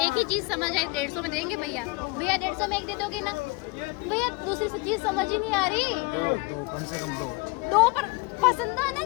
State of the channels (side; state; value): right; quieter; 26.1 dB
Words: एक ही चीज समझ आई। 150 में देंगे भैया? भैया 150 में एक दे दोगे ना? भैया दूसरी से चीज समझ ही नहीं आ रही। दो कम से कम दो पर पसंद